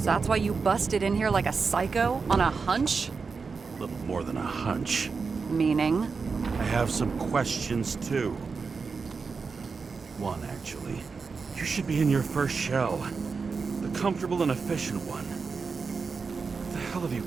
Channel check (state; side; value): quieter; left; 4.9 dB